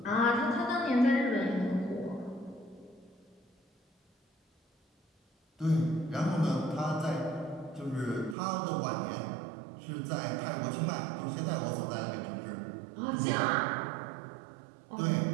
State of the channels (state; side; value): drops out; left; at 8.3 s